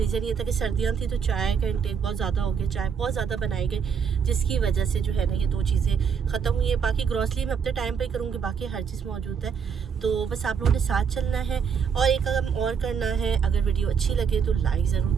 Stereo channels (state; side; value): quieter; left; 6.7 dB